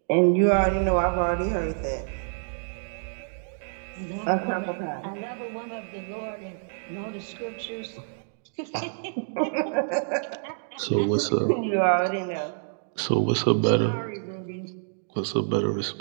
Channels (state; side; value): silent; left; digital silence